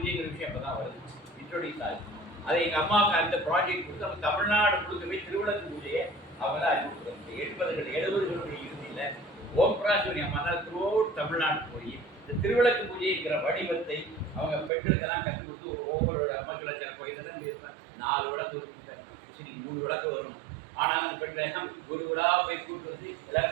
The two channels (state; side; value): drops out; left; at 14.7 s